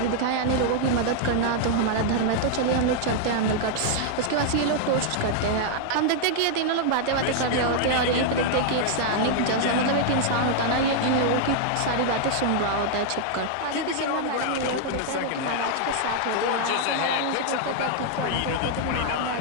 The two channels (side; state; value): both; different; correlation -0.01